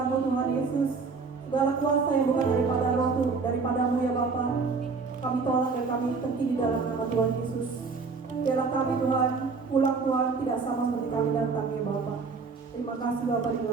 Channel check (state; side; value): quieter; left; 4.7 dB